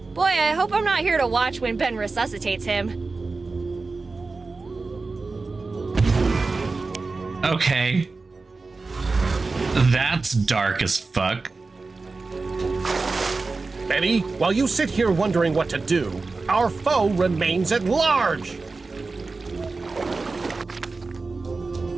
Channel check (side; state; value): left; quieter; 3.9 dB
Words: Boy, I hope I'm not here to watch when Ben resuscitates him. Okay. That's dark as fuck. Betty, while you sit here wondering what to do, our foe remains at large.